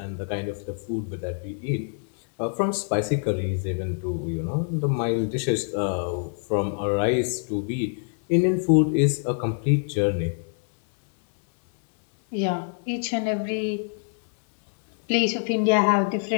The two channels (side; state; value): right; silent; 62 dB below the other